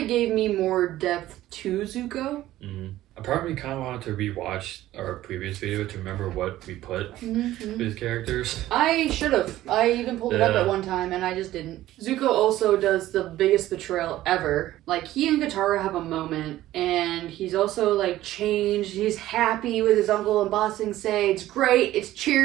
of gave me more depth to Zuko. Mm-hmm. A part of me kind of wanted to rewatch our previous video to remember what we put with his characters. I should have. I even pulled it up at one time and I just didn't. Zuko also does the biggest betrayal ever. Like, he and Katara have a moment and he's also like changed. He's happy with his uncle and Ba Sing Se. It's great. It's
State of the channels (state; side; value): quieter; left; 14.8 dB